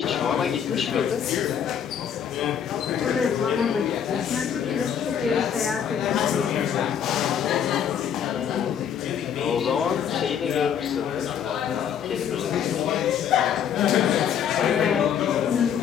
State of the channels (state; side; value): quieter; right; 8.5 dB